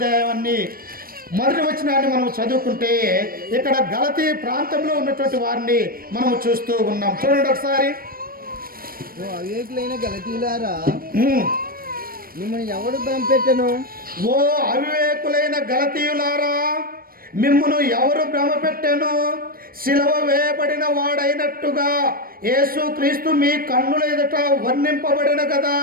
1వ వచనాన్ని మనం చదువుకుంటే ఇక్కడ గలతీ ప్రాంతంలో ఉన్నటువంటి వారిని మనము చూస్తూ ఉన్నాం. చూడండి ఒకసారి. అవివేకులైన గలతీయులారా, మిమ్మల్ని ఎవడు భ్రమపెట్టెను? ఓ అవివేకులైన గలతీయులారా, మిమ్మును ఎవరు భ్రమపెట్టెను? సిలువ వేయబడిన వాడైనట్టుగా యేసు క్రీస్తు మీ కన్నుల ఎదుట వర్ణింపబడిన కదా.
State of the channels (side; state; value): left; late; 0.43 ms